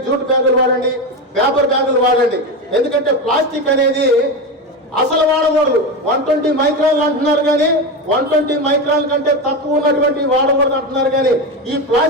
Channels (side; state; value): both; normal; correlation 0.17